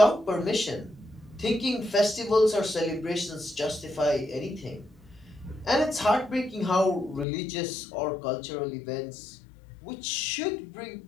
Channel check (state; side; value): drops out; right; at 7.2 s